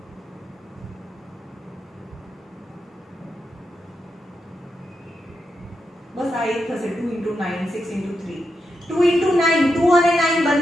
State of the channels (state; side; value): normal; both; correlation 0.86